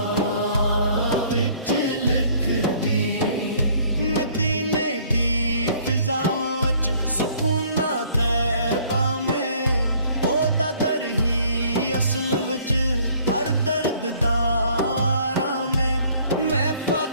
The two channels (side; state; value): both; inverted; correlation -0.58